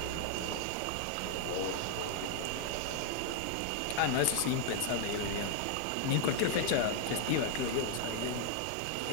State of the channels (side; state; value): both; different; correlation 0.00